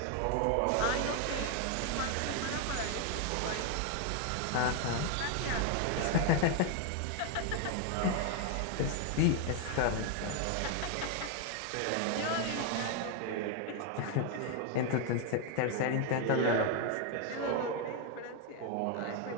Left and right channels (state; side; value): different; both; correlation 0.00